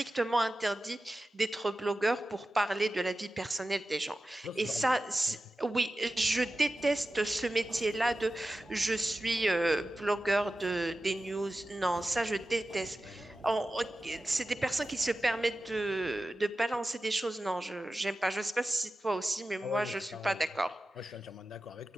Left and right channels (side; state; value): both; normal; correlation 0.94